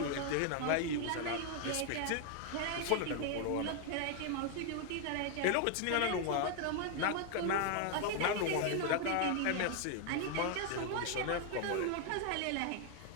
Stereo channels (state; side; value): different; both; correlation 0.00